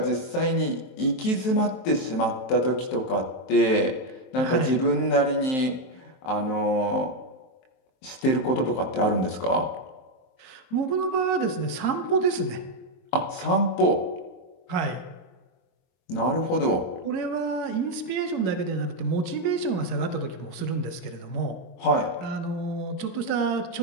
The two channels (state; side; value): late; right; 23 ms